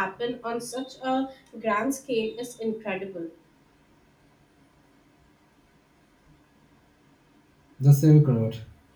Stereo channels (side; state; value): both; identical; correlation 1.00